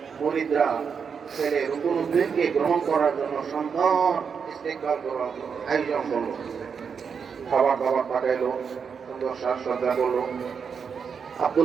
মুরিদরা ছেলে রুকুনুদ্দিনকে গ্রহণ করার জন্য সুন্দর ইস্তেকবাল করার আয়োজন করলো। খাবার দাবার পাঠাইলো, সুন্দর সাজসজ্জা করলো।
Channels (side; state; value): left; quieter; 6.4 dB